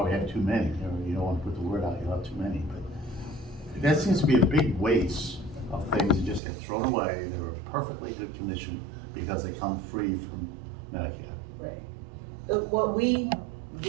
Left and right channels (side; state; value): left; drops out; at 6.4 s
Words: have too many, you don't wanna put the word out, you have too many, but that seems to be a big waste of things that just get thrown away that are in perfectly good condition because they come free from Medicare. Right. What we